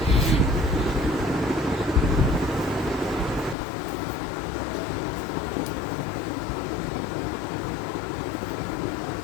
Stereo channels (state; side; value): drops out; right; at 3.6 s